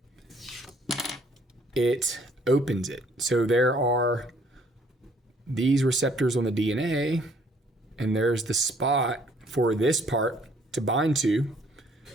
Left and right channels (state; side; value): normal; both; correlation 0.62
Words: It opens it. So there are these receptors on the DNA, and there's the spot for this part to bind to.